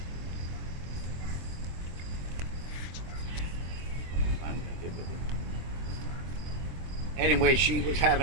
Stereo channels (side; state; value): left; late; 23 ms